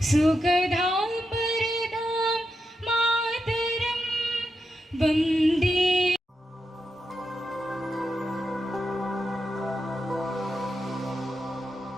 सुखदां वरदां मातरं वन्दे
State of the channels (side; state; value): both; normal; correlation 0.86